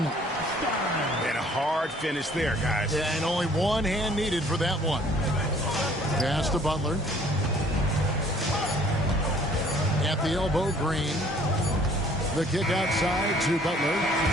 And a hard finish there, guys. Yeah, and only one hand needed for that one. Pass to Butler. At the elbow, Green. The kick outside to Butler.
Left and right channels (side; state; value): both; normal; correlation 0.57